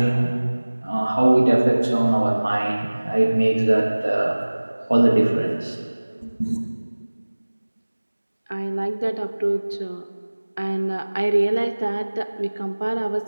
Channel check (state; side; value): inverted; both; correlation -1.00